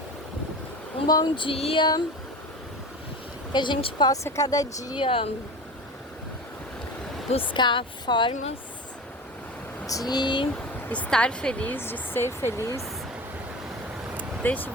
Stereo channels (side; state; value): both; normal; correlation 0.32